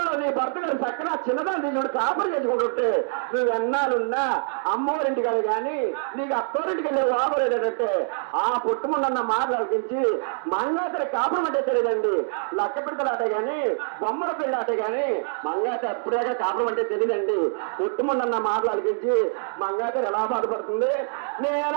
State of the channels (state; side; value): silent; left; digital silence